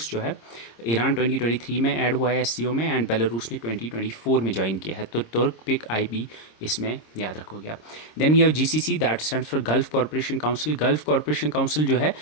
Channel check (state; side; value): late; right; 26 ms